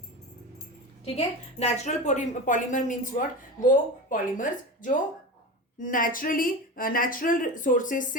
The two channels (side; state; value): both; normal; correlation 0.27